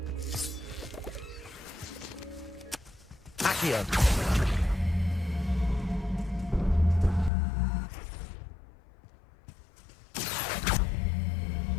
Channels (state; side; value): drops out; right; at 7.3 s